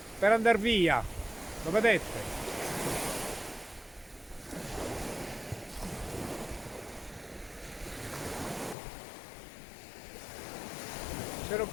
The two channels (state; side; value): drops out; right; at 8.8 s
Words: per andare via, lo vedete? Ce lo